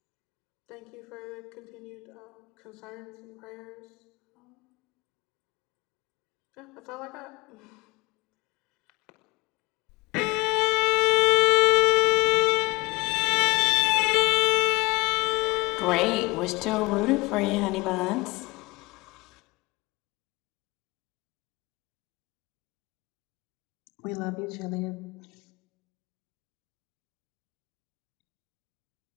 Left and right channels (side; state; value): right; quieter; 24.4 dB